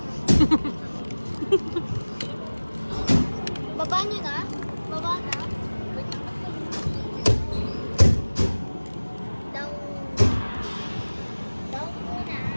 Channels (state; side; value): inverted; both; correlation -1.00